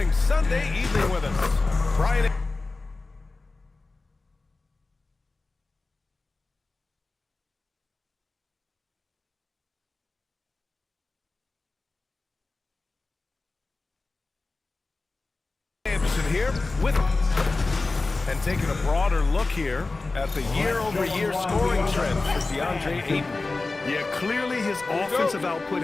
Sunday evening with us. Brian. Anderson here with and taking a broader look here at the year-over-year scoring trend for DeAndre Ayton. Yeah, clearly his offensive output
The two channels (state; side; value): quieter; right; 3.5 dB